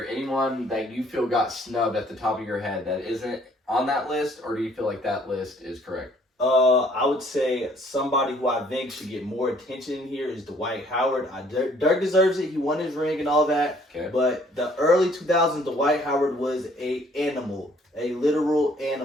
anyone that you feel got snubbed at the top of your head that isn't on that list, or do you feel like that list is correct? I would say somebody who I think should get more attention here is Dwight Howard. Dirk deserves it. He won his ring and all that. Okay. But the early 2000s, Dwight Howard was a literal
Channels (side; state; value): both; normal; correlation 0.60